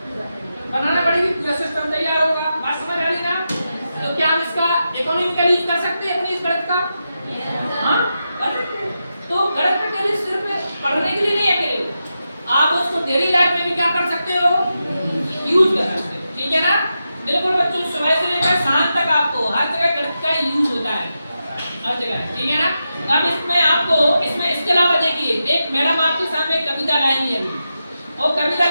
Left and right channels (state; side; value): inverted; both; correlation -0.88